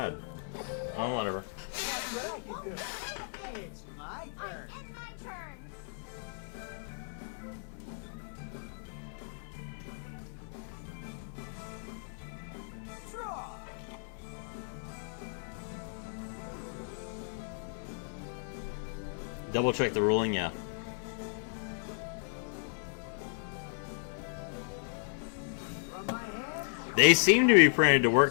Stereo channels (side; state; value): right; silent; 55 dB below the other